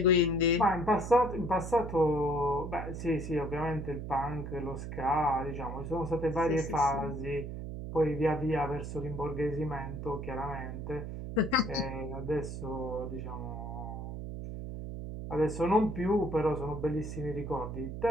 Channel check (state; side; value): noise; right; hum, 7 dB below the sound